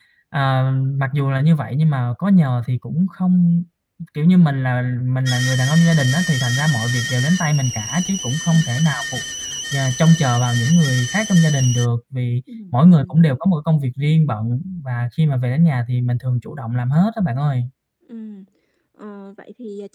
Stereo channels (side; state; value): both; identical; correlation 1.00